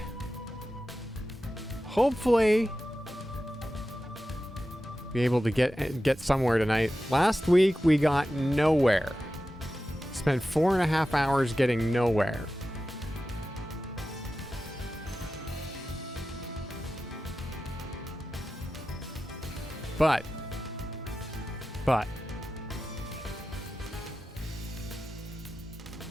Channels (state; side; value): normal; both; correlation 0.93